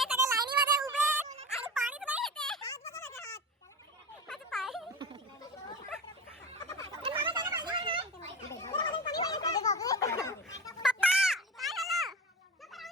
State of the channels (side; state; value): both; normal; correlation 0.29